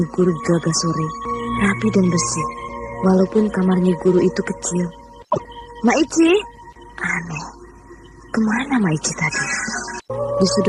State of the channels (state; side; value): identical; both; correlation 1.00